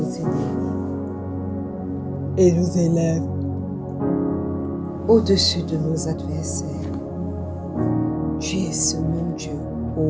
ennemis et nous élève au-dessus de nos adversaires. Tu es ce même Dieu,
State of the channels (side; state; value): both; identical; correlation 1.00